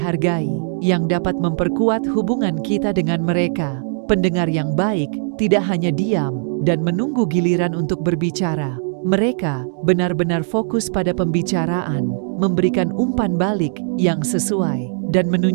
yang dapat memperkuat hubungan kita dengan mereka. Pendengar yang baik tidak hanya diam dan menunggu giliran untuk berbicara. Mereka benar-benar fokus pada pembicaraan, memberikan umpan balik yang sesuai, dan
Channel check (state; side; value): silent; left; digital silence